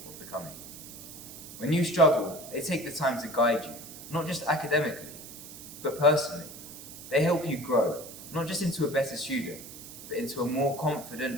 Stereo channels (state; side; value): noise; right; hiss, 14 dB below the sound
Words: of becoming. When you struggle, they take the time to guide you, not just academically, but personally. They help you grow, not just into a better student, but into a more